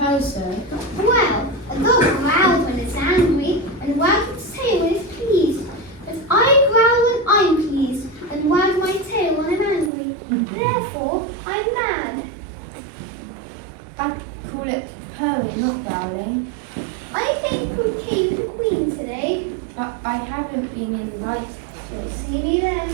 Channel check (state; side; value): drops out; left; at 9.9 s